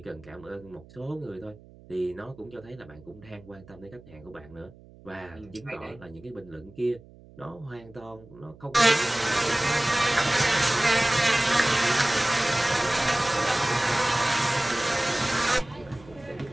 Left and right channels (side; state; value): right; noise; hum, 23 dB below the sound